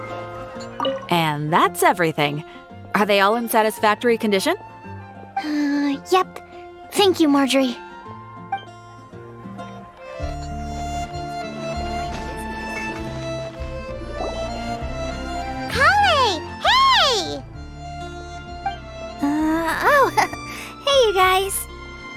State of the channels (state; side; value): identical; both; correlation 1.00